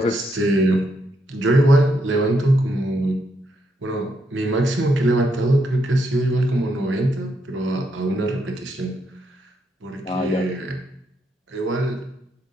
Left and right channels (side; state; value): both; normal; correlation 0.78